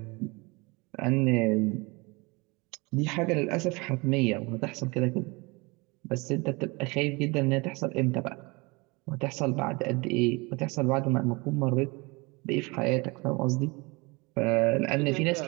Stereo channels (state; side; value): quieter; left; 26.4 dB